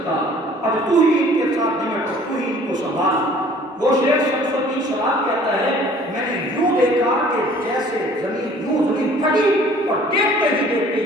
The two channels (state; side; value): normal; both; correlation 0.53